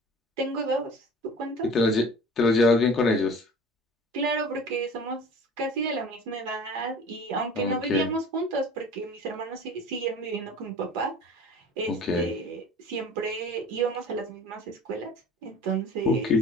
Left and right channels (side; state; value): both; normal; correlation 0.42